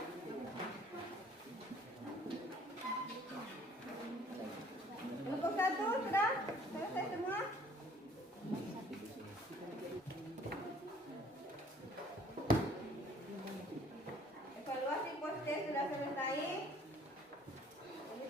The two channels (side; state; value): both; normal; correlation 0.56